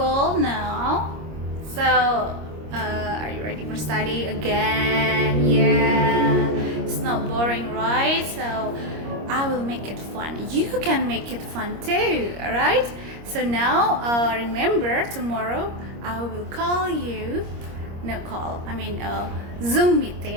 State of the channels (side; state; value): left; late; 25 ms